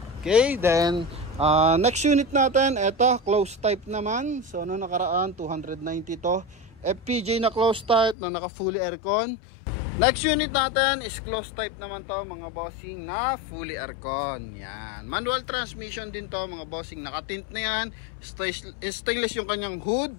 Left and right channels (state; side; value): drops out; right; at 8.2 s